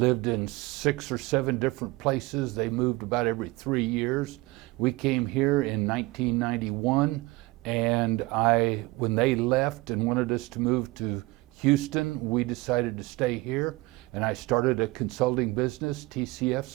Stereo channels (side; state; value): left; quieter; 22.3 dB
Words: in 6 or 7 different places. They moved about every 3 years. We came here in 1991, and when they left and wanted us to move to Houston, we decided to stay here, and I started a consulting business, TCF